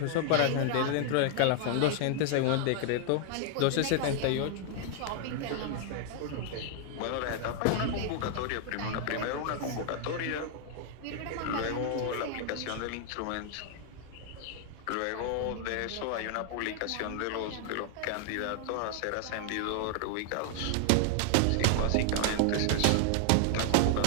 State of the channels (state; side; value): different; both; correlation 0.00